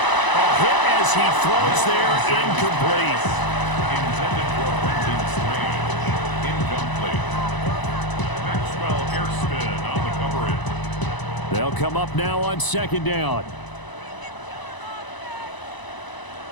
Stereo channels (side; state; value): right; late; 1.0 ms